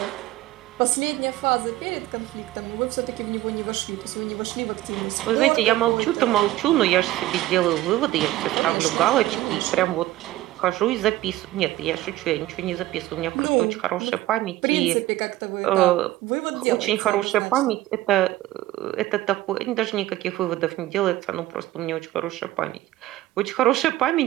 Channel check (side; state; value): left; quieter; 15.9 dB